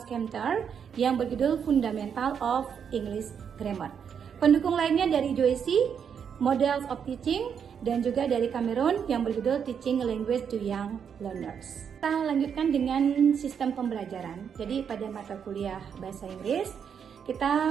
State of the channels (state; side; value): quieter; left; 7.5 dB